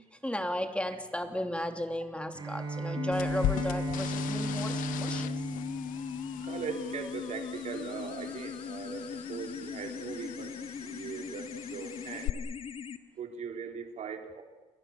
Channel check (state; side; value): normal; both; correlation 0.67